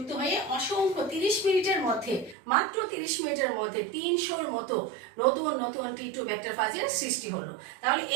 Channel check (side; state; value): left; drops out; at 2.4 s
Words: হয়ে অসংখ্য 30 মিনিটের মধ্যে, মাত্র 30 মিনিটের মধ্যে 300-র মতো নতুন নতুন টি2 ব্যাকটেরিয়া ফাজের সৃষ্টি হলো। তাহলে